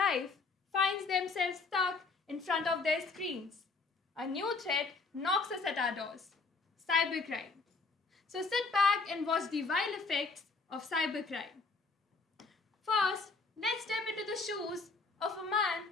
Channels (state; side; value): quieter; right; 4.1 dB